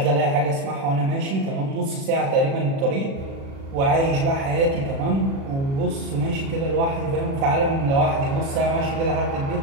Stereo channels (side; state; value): left; late; 36 ms